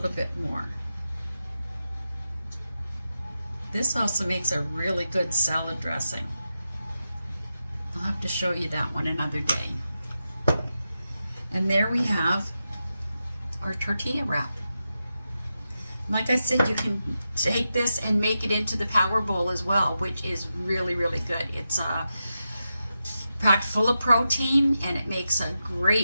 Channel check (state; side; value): inverted; both; correlation -0.89